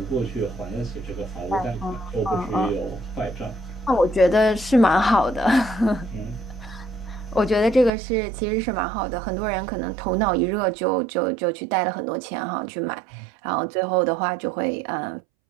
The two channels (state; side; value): drops out; left; at 7.9 s